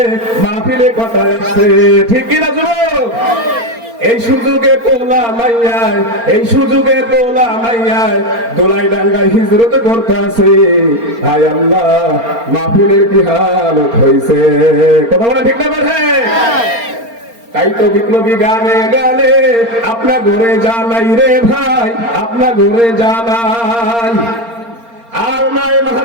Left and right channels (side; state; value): left; late; 4.3 ms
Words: মাহফিলে কথায় আছে, ঠিক কিনা যুবক? এই সুযোগে পোলা মাইয়ায়, এই সুযোগে পোলা মাইয়ায় দোলাই ডাঙ্গায় হিজরত করতেছে। হায় আল্লাহ, মাহফিলের কি হালত হইছে। কথা বলা ঠিক না বেঠে? তাই তো বিপ্লবী গানে গানে আপনা ঘরে জানাই রে ভাই, আপনা ঘরে জানাই। আর নাই